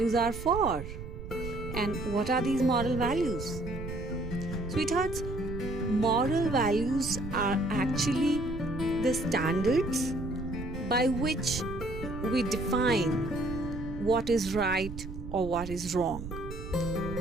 are for? And what are these moral values? Sweethearts, moral values are actually the standards by which we define what is right or what is wrong.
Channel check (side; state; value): right; noise; rumble, 9 dB below the sound